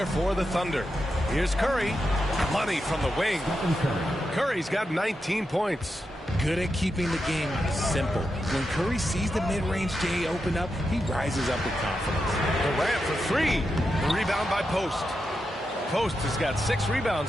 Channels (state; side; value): normal; both; correlation 0.87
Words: for the Thunder. Here's Curry. Money from the wing. Curry's got 19 points. Good at keeping the game simple. When Curry sees the mid-range J open up, he rises up with confidence. Durant for 3. The rebound by Post. Post has got 6